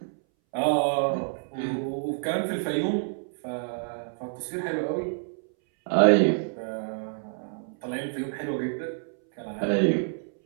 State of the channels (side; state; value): left; silent; 60 dB below the other